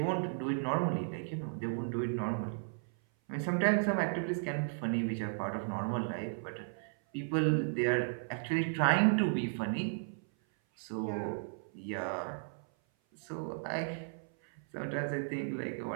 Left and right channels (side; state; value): left; silent; 55 dB below the other